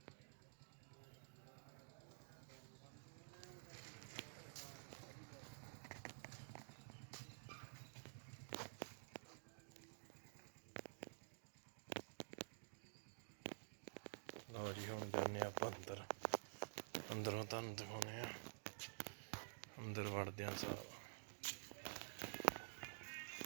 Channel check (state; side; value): silent; left; digital silence